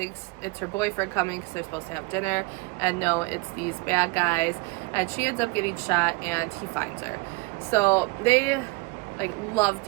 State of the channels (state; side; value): quieter; left; 25.7 dB